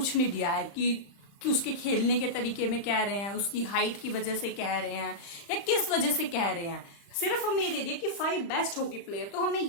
नहीं दिया है कि उसके खेलने के तरीके में कह रहे हैं, उसकी हाइट की वजह से कह रहे हैं, या किस वजह से कह रहे हैं। सिर्फ हमें ये दे दिए कि 5 बेस्ट हॉकी प्लेयर, तो हमें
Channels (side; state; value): right; late; 35 ms